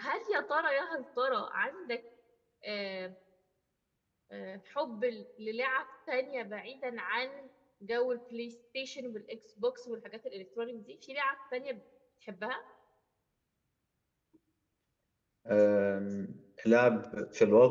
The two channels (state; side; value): identical; both; correlation 1.00